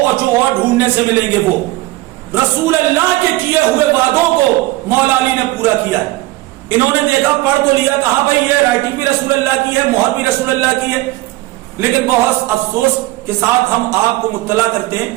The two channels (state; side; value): quieter; left; 18.8 dB